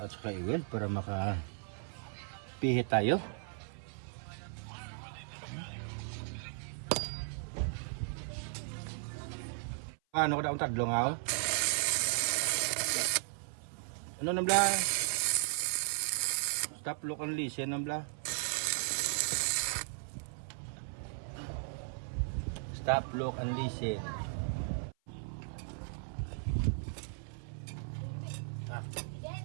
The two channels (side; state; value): left; silent; 54 dB below the other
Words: saka i-weld para makapihit tayo. Ano ko na ang tadlong ako? Ano nang bla? Stop, look and listen nang bla. Stop, look and listen.